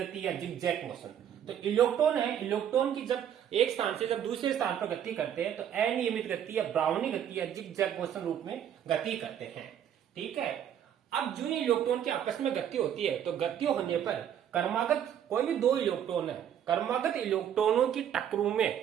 या जिगजैग मोशन। तो इलेक्ट्रॉन है, इलेक्ट्रॉन की जब एक स्थान से जब दूसरे स्थान पर गति करते हैं तो अनियमित गति या ब्राउनी गति या जिगजैग मोशन रूप में गति करते हैं। ठीक है। अब जो इलेक्ट्रॉन की आपस में गति होती है, तो गति होने पर क्रमागत कोई भी दो इलेक्ट्रॉन है, क्रमागत इलेक्ट्रॉनों की टक्करों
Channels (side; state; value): left; quieter; 9.6 dB